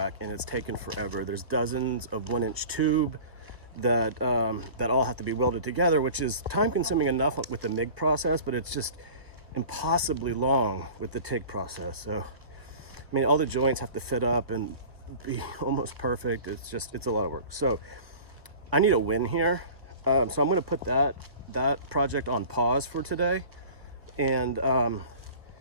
and it's taken forever. There's dozens of 1-inch tube that that all have to be welded together, which is time consuming enough with the MIG process, but it's just impossibly long with the TIG process. So I mean, all the joints have to fit up and be almost perfect. It's a lot of work. So I need a win here. So I'm going to put that project on pause for today, and I'm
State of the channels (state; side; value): late; left; 1.2 ms